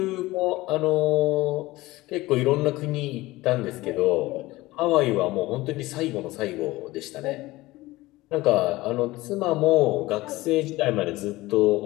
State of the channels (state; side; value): quieter; right; 19.1 dB